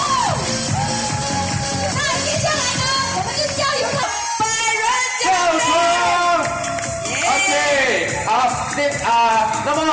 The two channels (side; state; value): both; identical; correlation 1.00